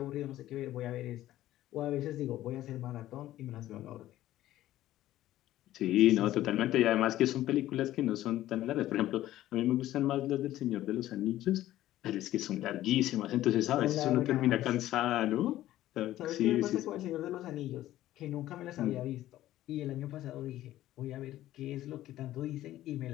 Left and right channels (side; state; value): right; quieter; 14.2 dB